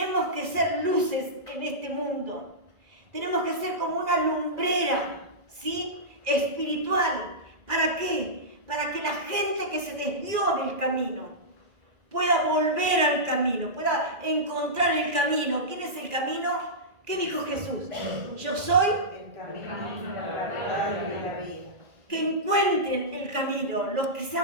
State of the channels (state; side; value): late; left; 2.4 ms